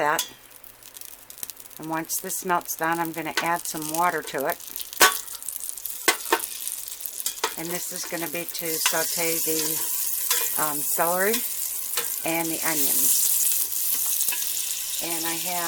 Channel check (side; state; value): both; identical; correlation 1.00